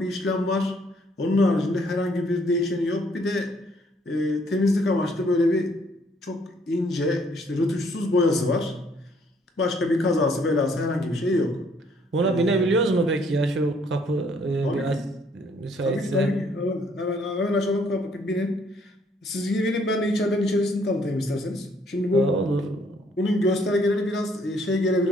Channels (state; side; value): normal; both; correlation 0.65